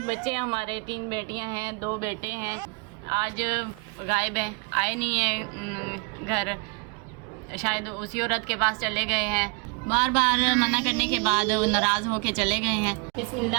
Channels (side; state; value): left; quieter; 31.8 dB